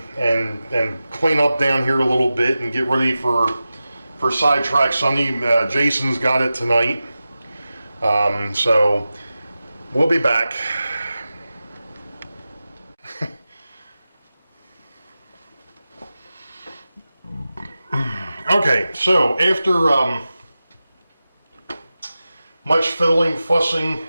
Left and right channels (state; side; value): inverted; both; correlation -0.94